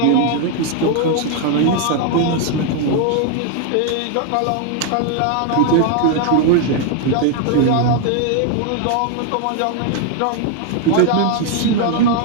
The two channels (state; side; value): different; both; correlation 0.00